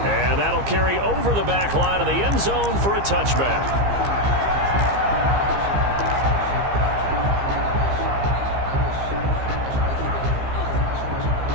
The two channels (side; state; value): left; late; 15 ms